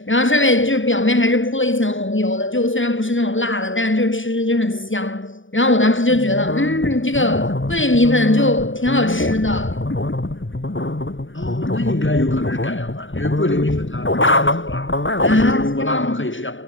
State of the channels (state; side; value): late; right; 0.57 ms